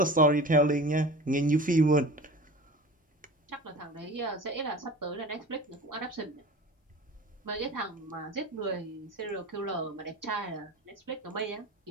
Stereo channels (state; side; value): normal; both; correlation 0.37